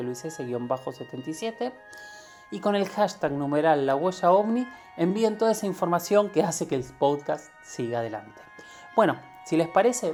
Luis S-77 y con el hashtag numeral La Huella OVNI envíen toda esa información que hace que el podcast siga adelante. Bueno, si les parece,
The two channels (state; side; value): identical; both; correlation 1.00